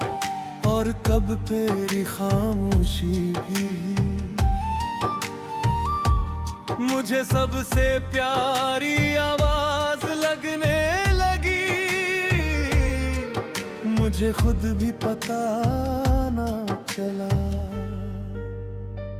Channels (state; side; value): identical; both; correlation 1.00